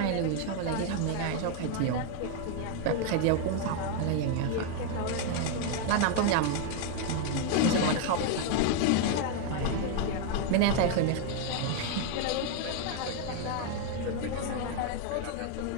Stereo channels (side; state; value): both; different; correlation 0.00